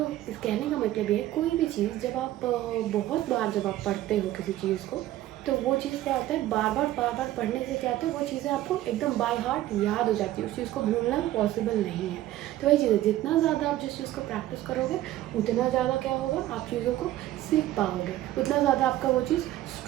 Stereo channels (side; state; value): left; quieter; 14.4 dB